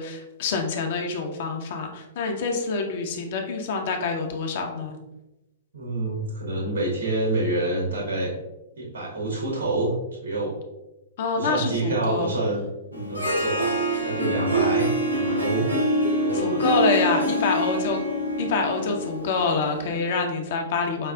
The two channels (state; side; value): inverted; both; correlation -0.31